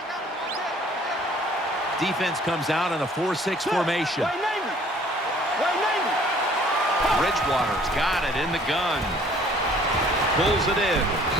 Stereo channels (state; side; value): normal; both; correlation 0.56